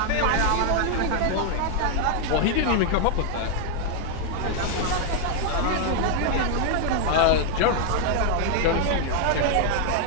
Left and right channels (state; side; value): different; both; correlation 0.00